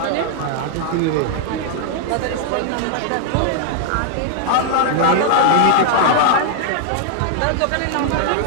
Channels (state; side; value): different; both; correlation 0.00